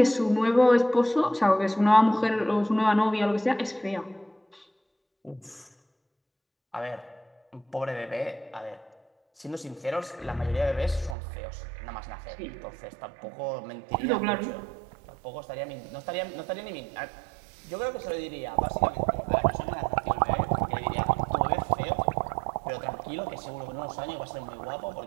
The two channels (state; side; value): drops out; left; at 11.2 s